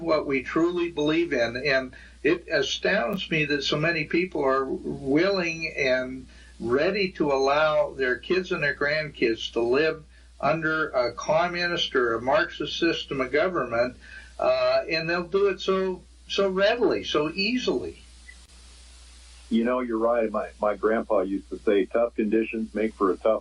what we truly believe in. And it astounds me that so many people are willing and ready to allow their kids and their grandkids to live under a communist or a Marxist system of government, and they'll do it so readily, so easily. You know, you're right. My grandpa used to say, tough conditions make for a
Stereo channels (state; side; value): identical; both; correlation 1.00